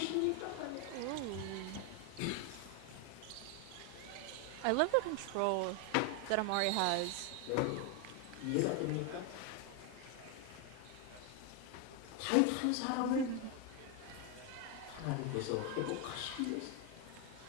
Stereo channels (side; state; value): both; different; correlation 0.01